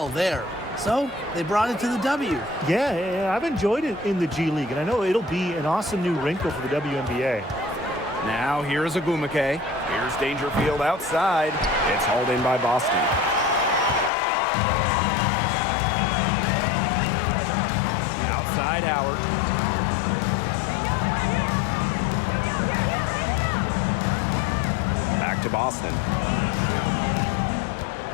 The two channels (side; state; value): right; drops out; at 14.1 s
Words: there. So they brought it to the W. Yeah, I've enjoyed it in the G League, and I know it'll be an awesome new wrinkle for the WNBA. Now here's Agumake. Here's Dangerfield outside. It's hauled in by Boston. Outside Howard. Back to Boston.